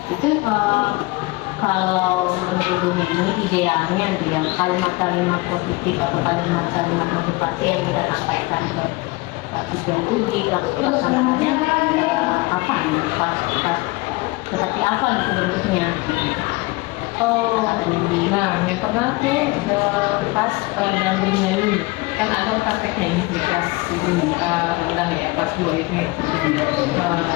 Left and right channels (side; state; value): right; quieter; 23.2 dB